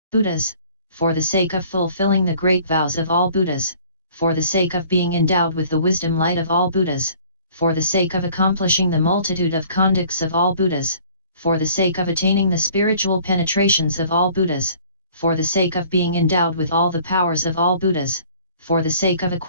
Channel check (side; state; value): both; inverted; correlation -0.53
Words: Buddhas, for the sake of fulfilling the great vows of all Buddhas, for the sake of being endowed with the wisdom light of all Buddhas, for the sake of accomplishing the multitude of conducts of all Buddhas, for the sake of attaining the spiritual penetrations of all Buddhas, for the sake of being endowed with all the powers of all Buddhas, for the sake of